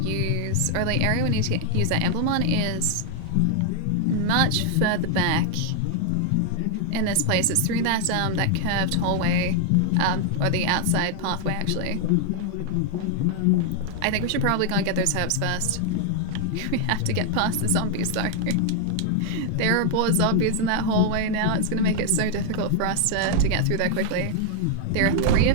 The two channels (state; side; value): different; both; correlation 0.00